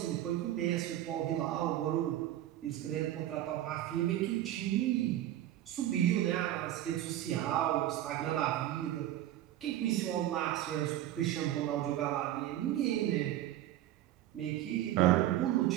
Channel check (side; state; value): left; quieter; 13.1 dB